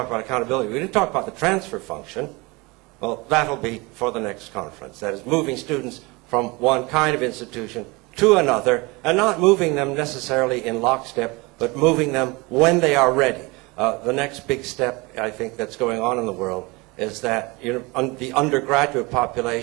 about accountability. We didn't talk about the transfer function. Well, that'll be for the next conference. That is moving students from one kind of institution to another, and not moving them necessarily in lockstep, but moving them when they are ready. The next big step, I think, that's going on in the world is that the undergraduate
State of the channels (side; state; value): left; quieter; 25.3 dB